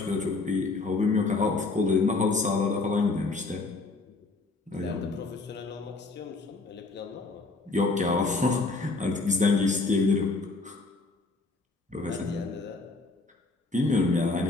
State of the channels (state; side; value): quieter; right; 3.5 dB